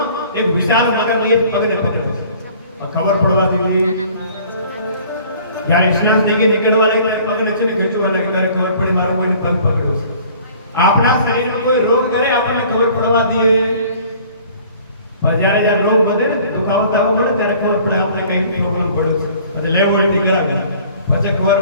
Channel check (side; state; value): both; inverted; correlation -0.51